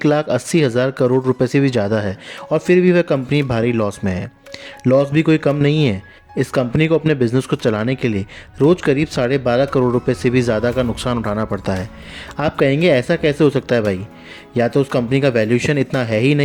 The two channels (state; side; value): identical; both; correlation 1.00